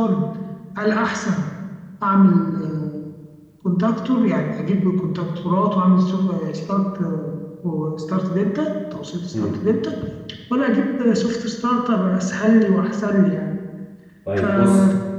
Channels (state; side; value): identical; both; correlation 1.00